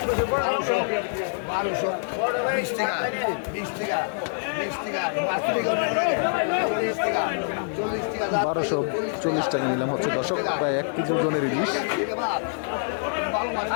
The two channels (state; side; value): silent; right; 61 dB below the other